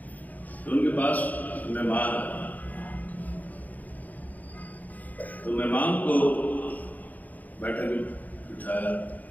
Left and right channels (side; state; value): right; late; 0.079 ms